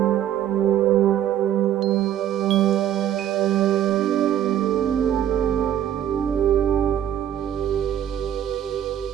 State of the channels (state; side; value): quieter; left; 10.8 dB